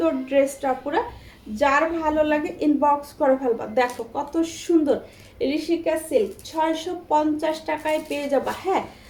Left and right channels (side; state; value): both; identical; correlation 1.00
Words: ড্রেসটা পুরো। যার ভালো লাগে ইনবক্স করে ফেলবা। দেখো কত সুন্দর ঋষিকা সিল্ক, 650 টাকায় পেয়ে যাবা। হ্যাঁ,